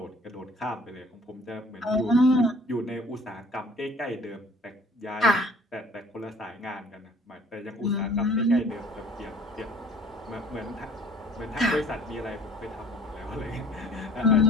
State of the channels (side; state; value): both; normal; correlation 0.53